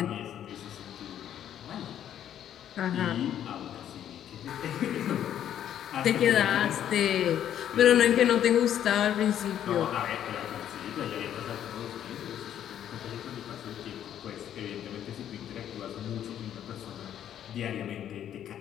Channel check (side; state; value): right; quieter; 10.4 dB